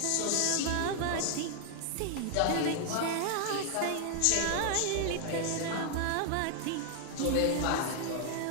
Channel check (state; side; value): different; both; correlation 0.00